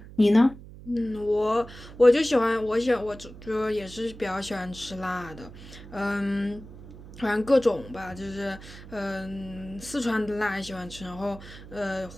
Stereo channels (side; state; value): right; noise; hum, 16 dB below the sound